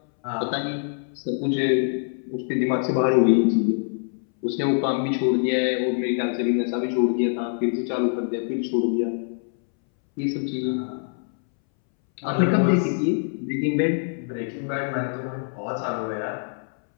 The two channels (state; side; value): silent; right; 62 dB below the other